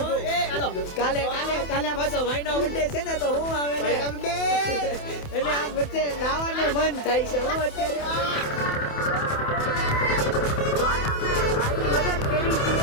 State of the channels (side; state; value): right; late; 28 ms